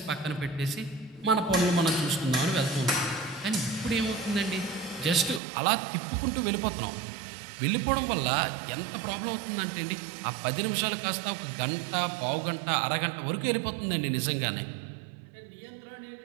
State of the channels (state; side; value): drops out; left; at 5.4 s